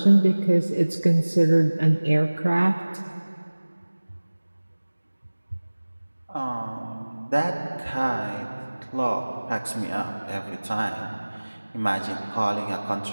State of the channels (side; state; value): both; inverted; correlation -1.00